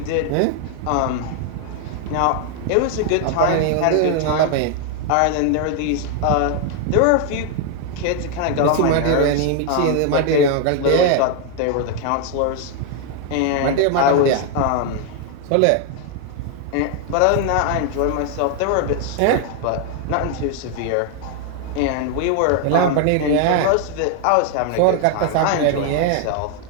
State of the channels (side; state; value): both; different; correlation 0.01